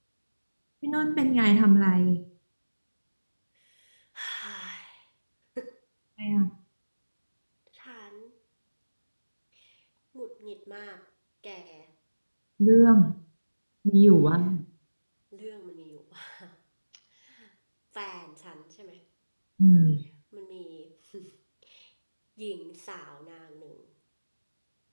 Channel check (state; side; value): inverted; both; correlation -1.00